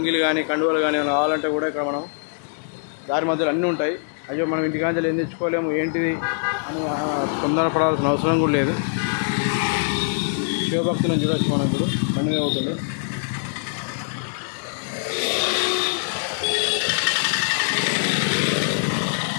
కానీ కండువలు కానీ ఏమైనా కావాలంటే కూడా ఇక్కడ మనం దారి మధ్యలో అన్నీ ఉంటాయి. అయ్యో మనం ఇంటికాంచెలు ఏం తెచ్చుకోలేము ఏంటిది అని తొందరపడాల్సిన అవసరం కూడా లేదు. శివభక్తులను చూడవచ్చు. మనం ఇప్పుడు పండుగ అవుతుండు.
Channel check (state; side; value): silent; right; digital silence